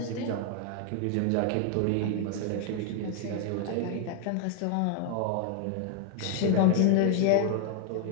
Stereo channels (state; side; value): different; both; correlation 0.00